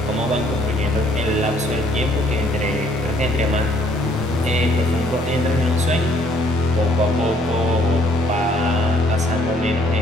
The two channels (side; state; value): both; normal; correlation 0.63